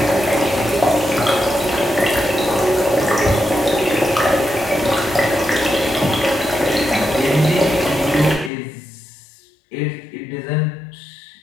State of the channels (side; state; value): right; drops out; at 8.5 s